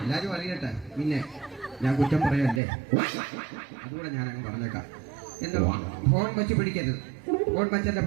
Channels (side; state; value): left; drops out; at 2.6 s